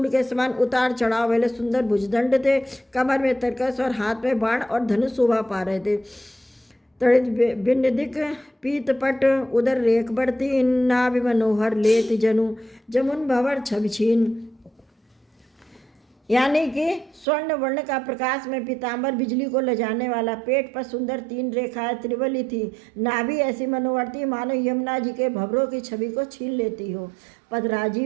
के समान उतार चढ़ाव वाले सुंदर भुजदंड थे। कमर में तरकस और हाथ में बाण और धनुष शोभा पा रहे थे। तड़ित बिन्दिक पीत पट उदर रेख बढ़ती नाभि मनोहर लेत जनु जमुन भवर छबिछीन। यानी कि स्वर्ण वर्ण का प्रकाश में पीताम्बर बिजली को लजाने वाला। पेट पर सुंदर 3 रेखाएं त्रिवली थी। नाभि ऐसी मनोहर थी मानो यमुना जी के भवरों की छवि को छीन लेती हो। पद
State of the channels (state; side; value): drops out; left; at 17.2 s